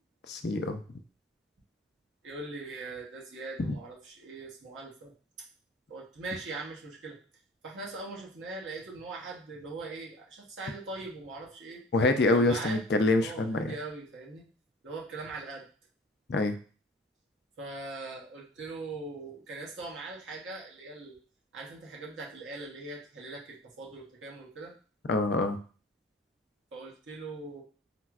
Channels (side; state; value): both; normal; correlation 0.44